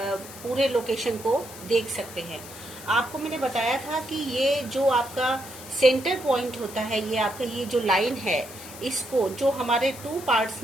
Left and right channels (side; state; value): left; noise; hiss, 15 dB below the sound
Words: लोकेशन को देख सकते हैं। आपको मैंने बताया था कि ये जो आपका सेंटर पॉइंट होता है, ये आपका ये जो लाइन है, इसको जो हमारे 2 पार्ट्स